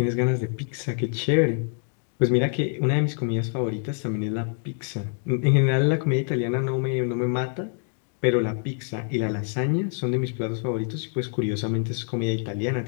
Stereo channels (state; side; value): silent; right; 56 dB below the other